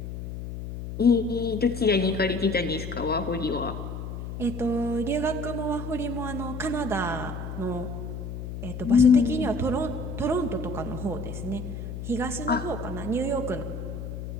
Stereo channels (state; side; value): noise; left; hum, 7 dB below the sound